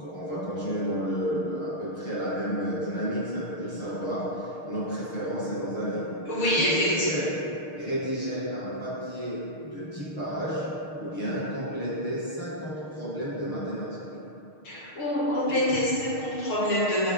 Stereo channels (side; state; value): right; late; 6.5 ms